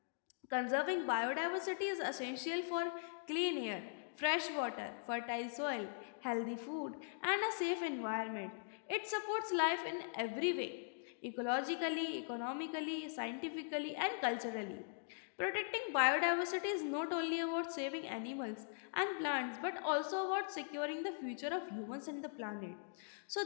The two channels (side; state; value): right; silent; digital silence